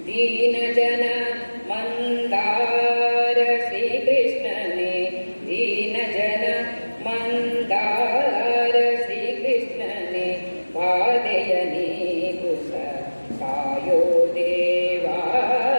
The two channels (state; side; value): inverted; both; correlation -1.00